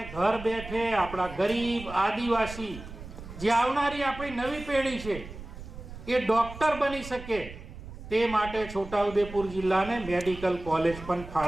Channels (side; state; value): right; noise; rumble, 13 dB below the sound